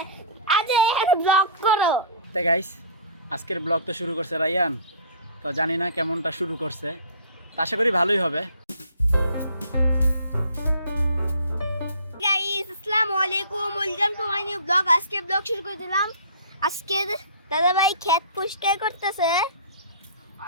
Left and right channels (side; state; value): both; inverted; correlation -0.46